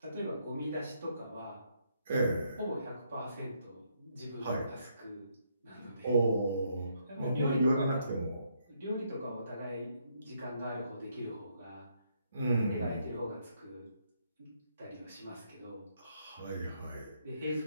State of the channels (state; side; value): inverted; both; correlation -0.73